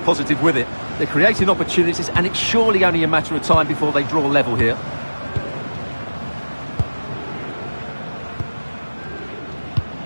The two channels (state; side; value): inverted; both; correlation -1.00